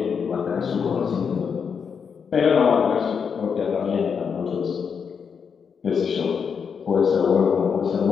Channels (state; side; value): quieter; right; 6.5 dB